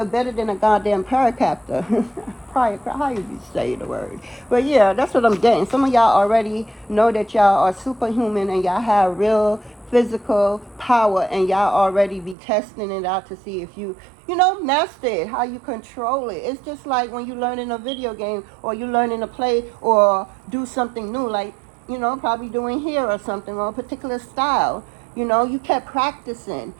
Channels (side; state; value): left; drops out; at 12.4 s